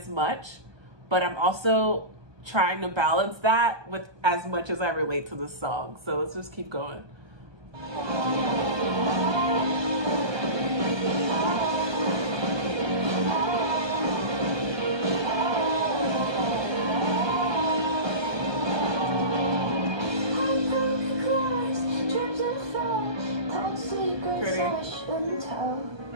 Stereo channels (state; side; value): late; left; 1.2 ms